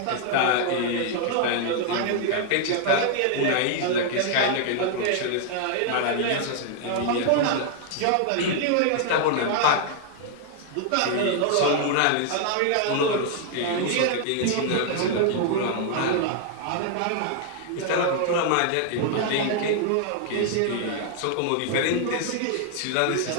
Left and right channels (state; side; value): different; both; correlation 0.00